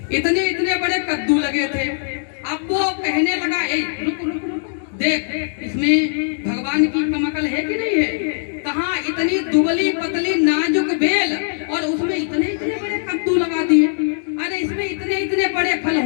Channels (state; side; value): silent; right; digital silence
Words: इतने इतने बड़े कद्दू लगे थे। अब वो कहने लगा, ए रुक रुक रुक, देख इसमें भगवान की कम अकल है कि नहीं है? कहाँ इतनी दुबली पतली नाजुक बेल और उसमें इतने इतने बड़े कद्दू लगा दिए। अरे इसमें इतने इतने बड़े फल